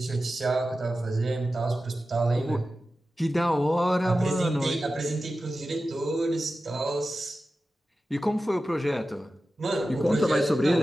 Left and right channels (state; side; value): normal; both; correlation 0.93